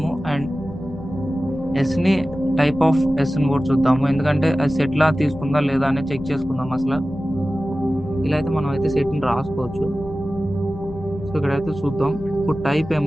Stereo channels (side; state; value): left; noise; hum, 18 dB below the sound